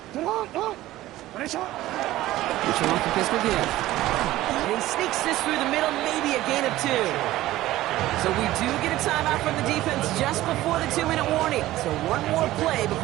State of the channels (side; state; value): left; quieter; 15.8 dB